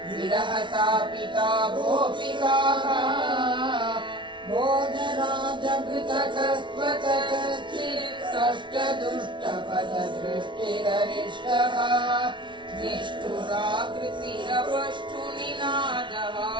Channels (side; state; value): left; late; 0.24 ms